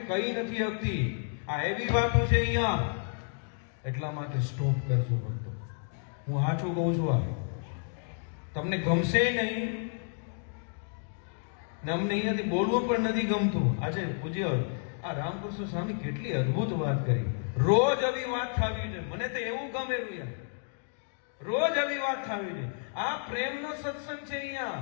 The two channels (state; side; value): silent; right; 57 dB below the other